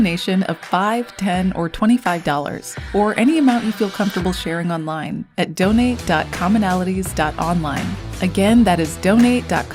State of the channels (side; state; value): both; identical; correlation 1.00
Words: of $5, $10, or $25, or any amount you feel comfortable sharing online at donate.commonalities.online. Again, that is